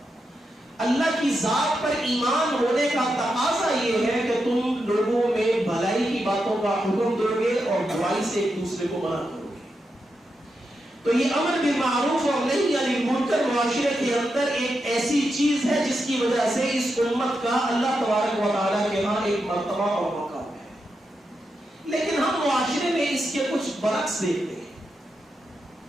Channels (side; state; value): both; normal; correlation 0.86